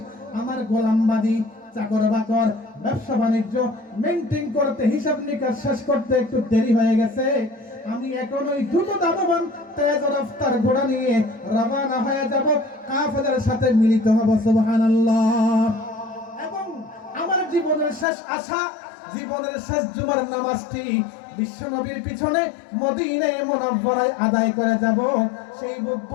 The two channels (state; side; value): drops out; right; at 18.1 s